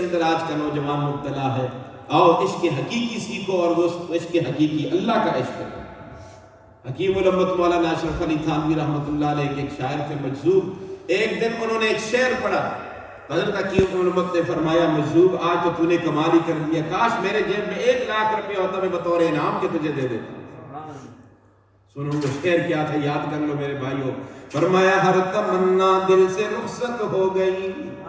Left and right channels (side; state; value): both; identical; correlation 1.00